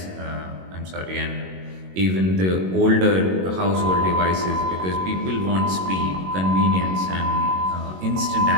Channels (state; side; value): late; left; 22 ms